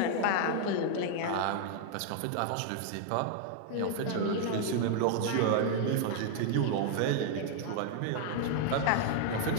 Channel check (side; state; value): both; different; correlation 0.00